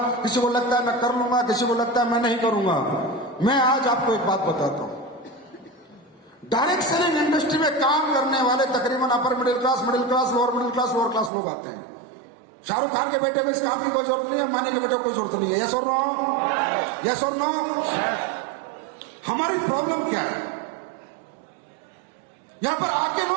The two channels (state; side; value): drops out; left; at 11.3 s